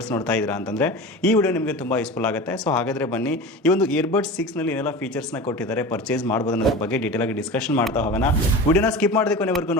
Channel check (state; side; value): normal; both; correlation 0.32